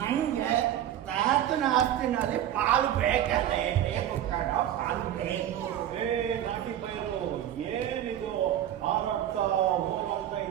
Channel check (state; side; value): quieter; left; 11.3 dB